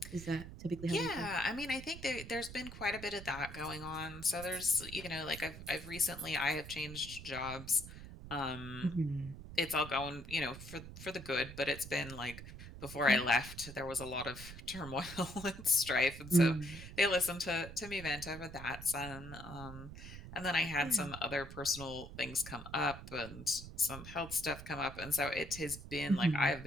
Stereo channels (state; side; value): noise; right; rumble, 12 dB below the sound